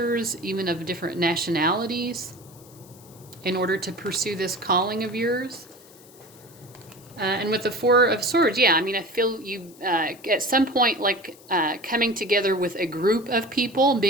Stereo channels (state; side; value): noise; left; hiss, 24 dB below the sound